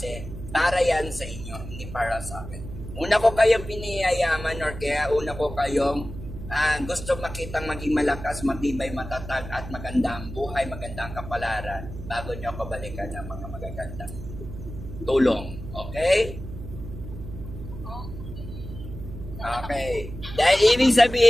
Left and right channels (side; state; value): right; noise; hum, 10 dB below the sound